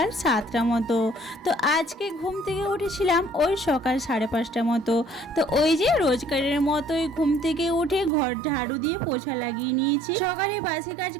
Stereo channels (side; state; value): left; drops out; at 8.1 s